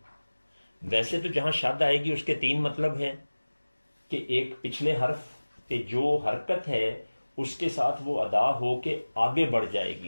ویسے تو جہاں شد آئے گی اس کے تین مطلب ہیں کہ ایک پچھلے حرف پہ جو حرکت ہے اس کے ساتھ وہ ادا ہو کے آگے بڑھ جائے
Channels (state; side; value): inverted; both; correlation -1.00